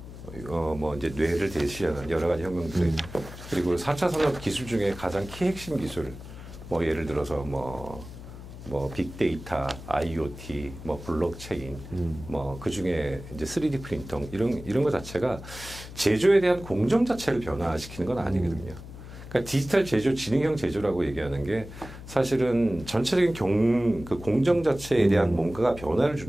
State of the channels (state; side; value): noise; left; hum, 14 dB below the sound